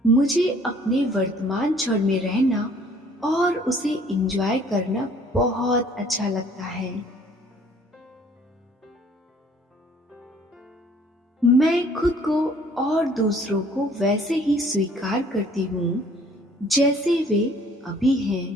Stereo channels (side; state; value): both; normal; correlation 0.56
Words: मुझे अपने वर्तमान क्षण में रहना और उसे एंजॉय करना बहुत अच्छा लगता है। मैं खुद को और दूसरों को वैसे ही स्वीकार करती हूँ जैसे वे अभी हैं।